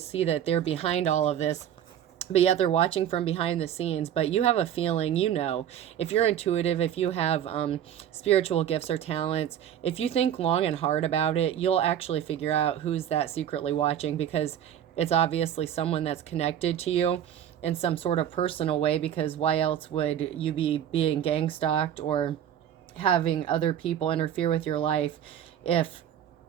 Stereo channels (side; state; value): left; quieter; 10.2 dB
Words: that they're behind all of this. But yet they're watching from behind the scenes. But you have a feeling, you know, if you're intuitive, if you have spiritual gifts or talents, if you think long and hard about it, you'll actually figure out who's that secretly watching, because it's obviously someone that's connected to you in some sort of personal way, because why else would you be being gang stalked or having other people interfere with your life if